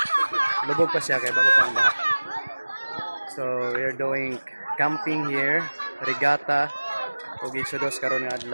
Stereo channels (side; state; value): both; inverted; correlation -1.00